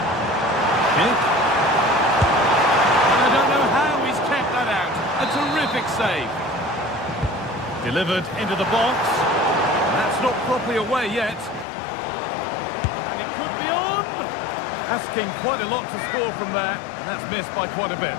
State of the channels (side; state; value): right; drops out; at 11.7 s